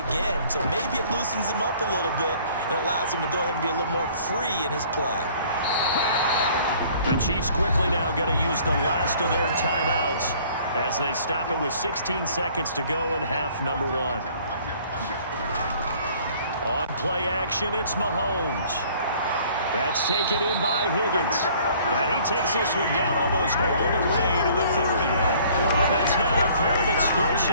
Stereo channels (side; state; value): both; inverted; correlation -0.55